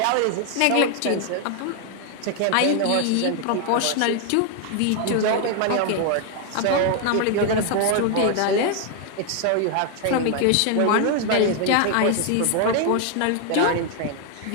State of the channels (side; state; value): both; different; correlation 0.00